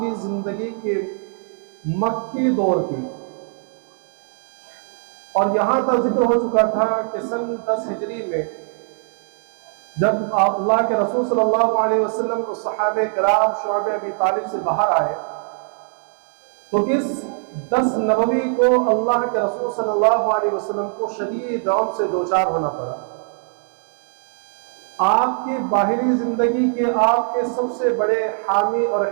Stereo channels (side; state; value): left; silent; 57 dB below the other